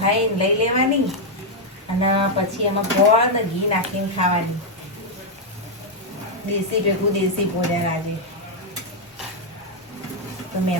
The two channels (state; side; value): normal; both; correlation -0.01